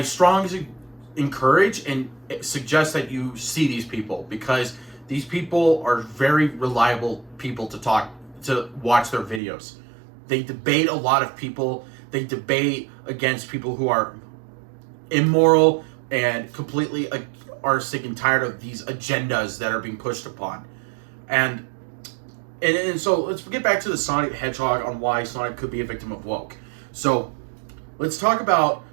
strongly encourage and suggest that you see these people, because these people are very reliable people to watch their videos. They debate a lot of people. They debate against people who are immoral and completely are sick and tired of these agendas that are being pushed upon. And so let's get back to the Sonic the Hedgehog on why Sonic could be a victim of woke. So let's talk about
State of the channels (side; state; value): left; drops out; at 9.4 s